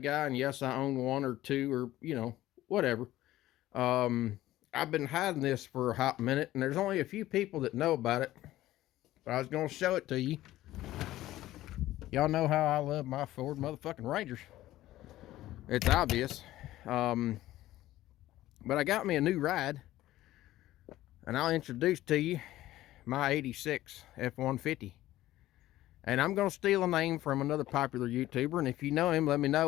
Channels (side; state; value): right; quieter; 15.2 dB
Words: guy, and yes, I own one or two or, whatever. I've been hiding this for a hot minute, and there's only a few people that know about it. But I was going to show it to you. Y'all know how I love my Ford motherfucking Rangers. It's obvious. But I got me a new ride, and I'll introduce to you my 86 F-150. And I'm going to steal a name from another popular YouTuber, and if you know him, let me